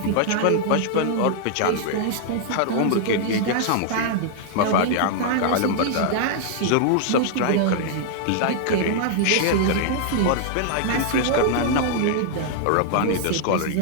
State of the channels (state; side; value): different; both; correlation -0.01